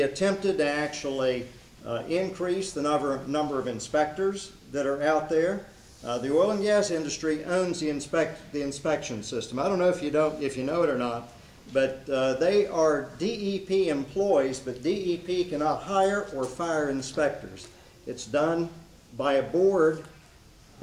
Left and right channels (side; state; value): both; identical; correlation 1.00